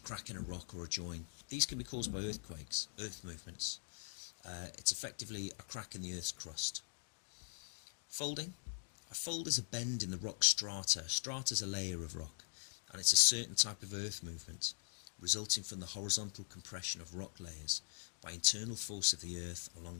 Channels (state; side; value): silent; right; digital silence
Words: crack in a rock or a join. These can be caused by earthquakes, earth movements. It's effectively a crack in the earth's crust. Folding. A fold is a bend in the rock strata. Strata is a layer of rock, and it's a certain type of earth movement, resulting from the horizontal compression of rock layers by internal force of the earth